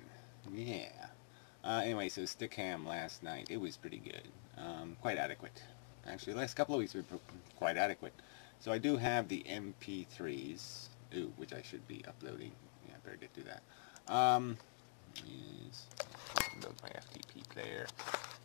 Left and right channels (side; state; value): right; silent; digital silence